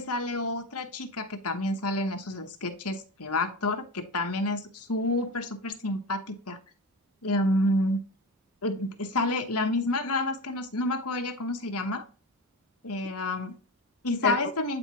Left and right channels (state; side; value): normal; both; correlation 0.24